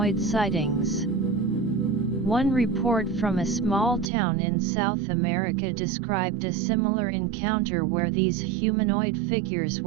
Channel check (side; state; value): left; drops out; at 4.0 s